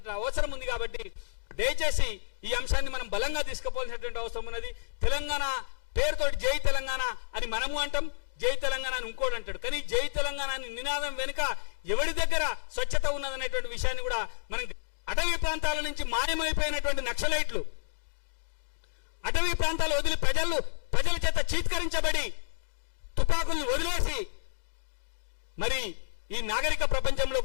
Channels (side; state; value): right; silent; digital silence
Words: అవసరం ఉంది. కాబట్టి దయచేసి ఈ అంశాన్ని మనం బలంగా తీసుకుపోవాల్సినటువంటి అవసరం ఉన్నది. తెలంగాణ పేరుతోటి జై తెలంగాణ అని మనము అంటాం, జై తెలంగాణ అని ఇంకోటి అంటాడు. కానీ జై తెలంగాణ అని నినాదం వెనుక ఎవరి దగ్గర స్వచ్ఛత ఉన్నదనేటువంటి విషయాన్ని కూడా మనం, అటవీ ప్రాంతాల నుంచి మాయమైపోయినటువంటి నక్సలైట్లు అటవీ ప్రాంతాలు వదిలి ప్రజల చేత చీత్కరించబడి తుపాకుల్ని వదిలేసి మరి ఈ నాగరిక